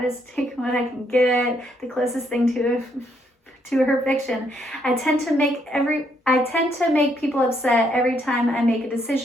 take what I can get, the closest thing to her fiction. I tend to make people upset every time I make a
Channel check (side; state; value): both; normal; correlation 0.73